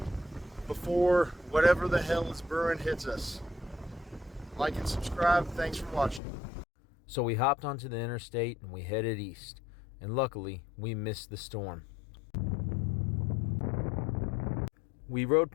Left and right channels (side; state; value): right; drops out; at 6.2 s